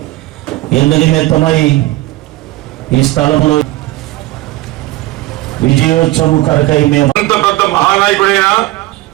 ఎందు నిమిత్తమై ఈ స్థలంలో విజయోత్సవం కొరకై మేము అంత పెద్ద మహానాయకుడైనా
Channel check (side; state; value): left; quieter; 18.1 dB